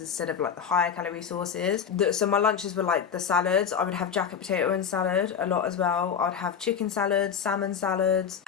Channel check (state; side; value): quieter; right; 7.5 dB